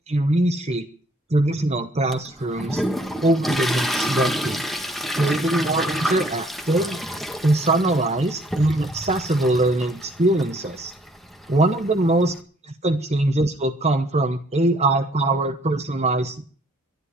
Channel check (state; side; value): normal; both; correlation 0.62